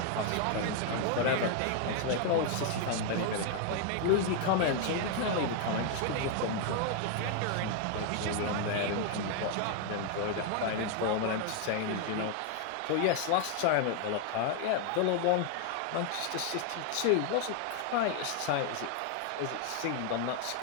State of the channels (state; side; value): different; both; correlation 0.00